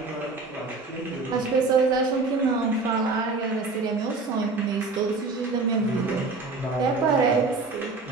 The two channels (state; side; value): quieter; left; 3.8 dB